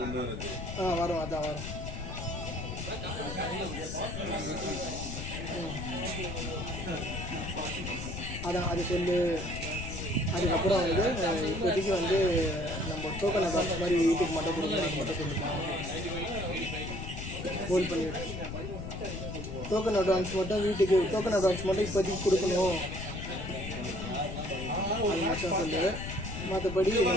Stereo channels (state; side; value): noise; left; rumble, 7 dB below the sound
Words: வரும் அதான் வரும். அதான் அது சொல்லு. அதுக்கப்புறம் வந்து இப்போதைக்கு வந்து நம்ம டோக்கன் அட்வான்ஸ் மாதிரி வீட்டுக்கு மட்டும் கொடுக்கணும் அது மட்டும் சொல்லுங்க. ஹோல்ட் பண்ணிவிடு. டோக்கன் அட்வான்ஸ் மட்டும் வீட்டுக்கு டோக்கன் அட்வான்ஸ் மட்டும் இப்போதைக்கு கொடுக்கணும். அது மட்டும் சொல்லு. மற்றபடி